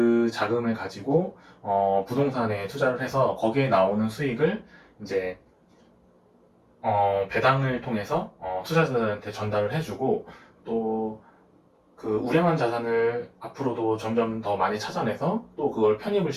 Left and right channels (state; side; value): identical; both; correlation 1.00